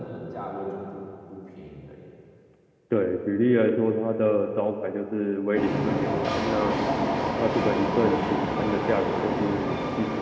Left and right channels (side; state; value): both; identical; correlation 1.00